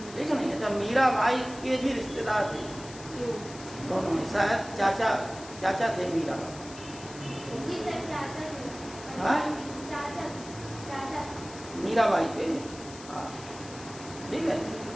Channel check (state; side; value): noise; left; hiss, 16 dB below the sound